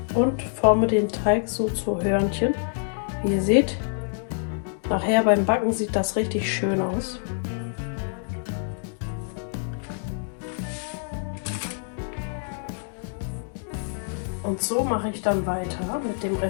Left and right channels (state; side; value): silent; right; digital silence